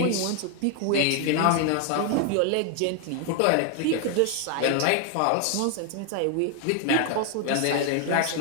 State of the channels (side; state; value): both; different; correlation 0.00